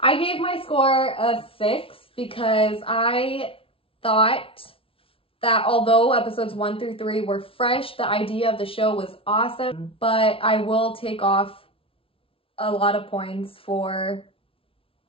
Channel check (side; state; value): right; late; 0.26 ms